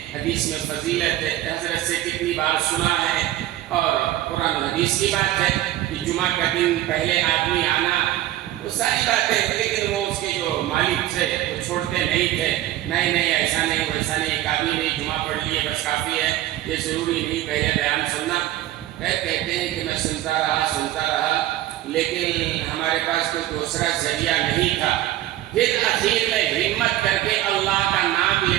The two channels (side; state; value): left; quieter; 14.3 dB